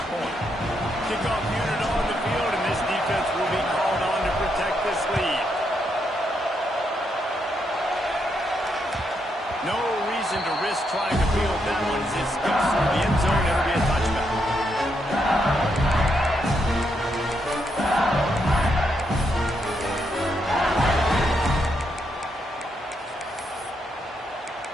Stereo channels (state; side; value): normal; both; correlation 0.79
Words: point. Kickoff unit on the field, and this defense will be called on to protect this lead. No reason to risk trying to field that one as it skips through the end zone. It'll be a touchback.